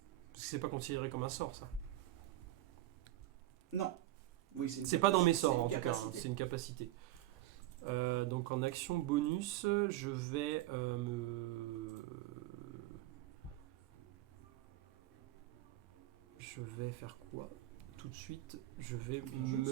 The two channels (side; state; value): left; quieter; 15.3 dB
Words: Parce que c'est pas considéré comme un sort ça. Non. Oui, C'est pas dans mes sorts. C'est en une tout cas, hein, capacité. c'est une capacité. Donc en action bonus, je vais Je vais faire quoi? Tout de suite, je vais bien joué,